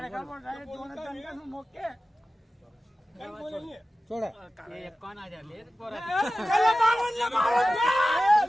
सोडा कोण आहे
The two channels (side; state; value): both; normal; correlation 0.95